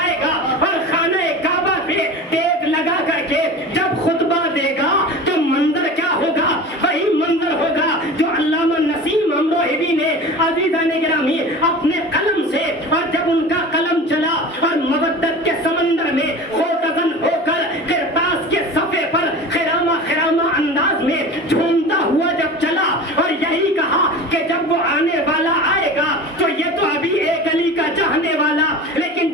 گا اور خانہ کعبہ پہ ٹیک لگا کر کے جب خطبہ دے گا تو منظر کیا ہوگا؟ وہی منظر ہوگا جو علامہ نسیم امروہوی نے عزیزان گرامی اپنے قلم سے، اور جب ان کا قلم چلا اور مودت کے سمندر میں خوتزن ہو کر کرتاس کے صفحے پر خرامہ خرامہ انداز میں جھومتا ہوا جب چلا اور یہی کہا کہ جب وہ آنے والا آئے گا تو یہ تو ابھی ایک علی کا چاہنے والا، لیکن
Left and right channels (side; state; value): both; normal; correlation 0.34